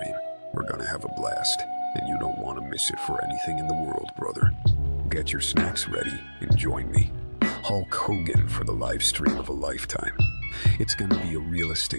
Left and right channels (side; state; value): both; inverted; correlation -1.00